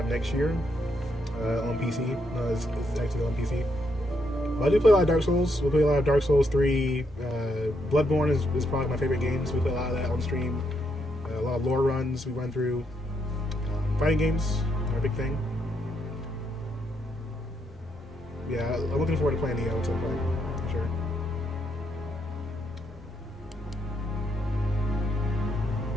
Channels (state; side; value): normal; both; correlation 0.77